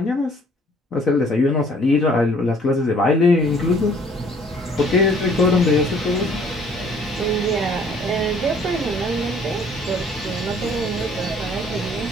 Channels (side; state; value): both; normal; correlation 0.58